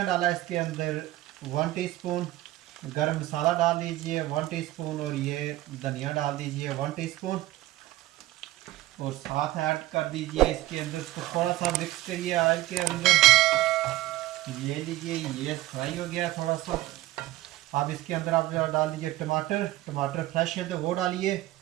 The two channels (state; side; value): quieter; left; 16.6 dB